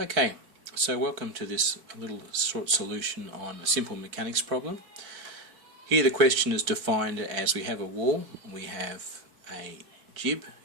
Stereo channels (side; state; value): left; late; 4.5 ms